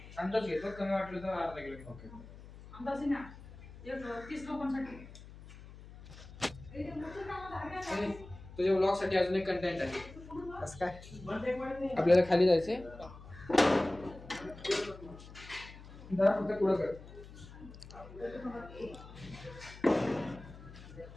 घेतो, कमी वाटलं तर अर्धा किलो. ओके, अंदाज ना 30 लोकांसाठी. तुझ्या व्लॉग साठी अजून एक कंटेंट आहे. कसं काय? आपल्याला खाली जायचंय. फक्त पुढं कर.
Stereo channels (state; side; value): noise; left; hum, 17 dB below the sound